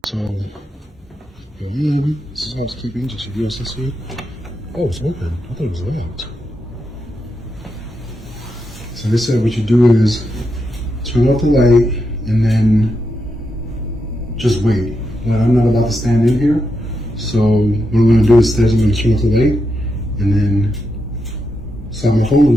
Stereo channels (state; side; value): normal; both; correlation 0.85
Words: So, this is housekeeping, just so you guys can see. Oh, it's open. I thought it was locked. So they said what you do is turn off the light and then just wait. Well, I'm not about to stand in here. So what I'm gonna do is I'm gonna turn off the light and then slide my phone on